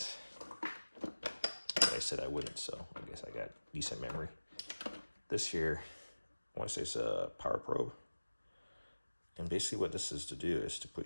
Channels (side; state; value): both; inverted; correlation -1.00